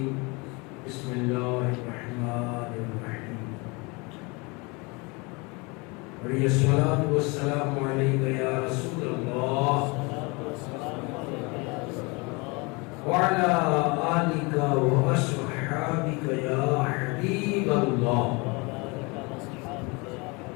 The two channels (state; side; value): quieter; right; 27.9 dB